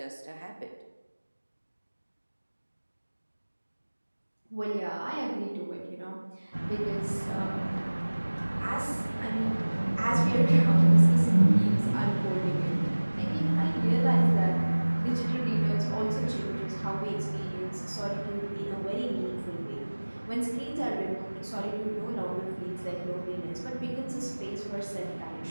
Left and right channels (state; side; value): inverted; both; correlation -1.00